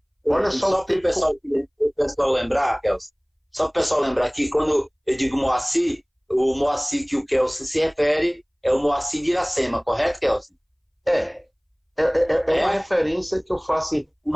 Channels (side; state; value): both; identical; correlation 1.00